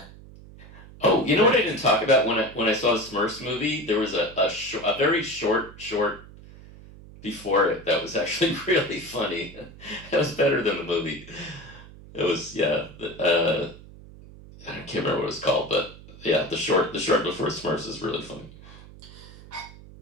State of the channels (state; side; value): noise; right; hum, 19 dB below the sound